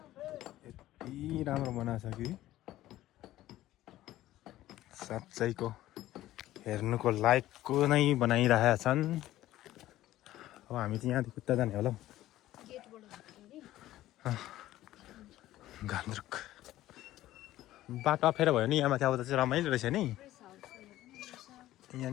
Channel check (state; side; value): quieter; right; 14.8 dB